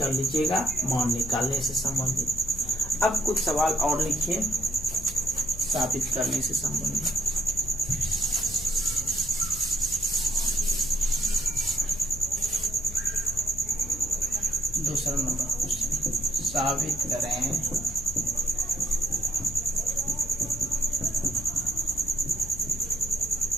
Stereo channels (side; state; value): left; noise; hum, 13 dB below the sound